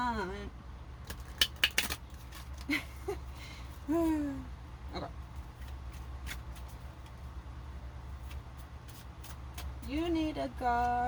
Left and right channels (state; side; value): identical; both; correlation 1.00